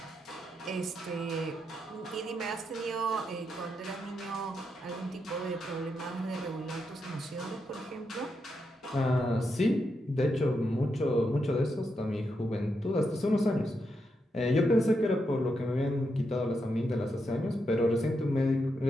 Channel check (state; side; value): normal; both; correlation 0.83